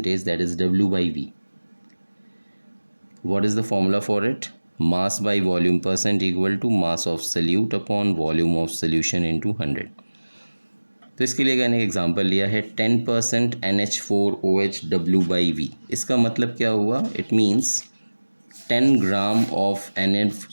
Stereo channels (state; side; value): inverted; both; correlation -1.00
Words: that is W/V। What is the formula for it? Mass by volume percent equal to mass of solute upon volume of solution into 100। तो इसके लिए मैंने example लिया है 10% NH4OH W/V। इसका मतलब क्या हुआ? It means 10 gram of